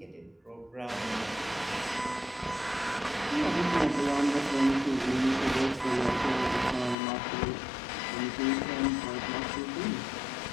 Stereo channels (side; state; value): right; drops out; at 7.0 s